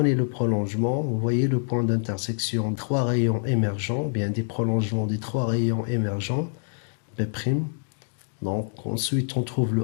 le prolongement, vous voyez le point d'intersection, trois rayons émergents, bien des prolongements des trois rayons émergents, B'. Donc ensuite on trouve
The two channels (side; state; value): right; silent; digital silence